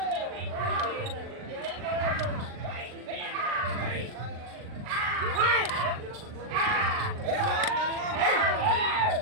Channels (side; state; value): left; late; 39 ms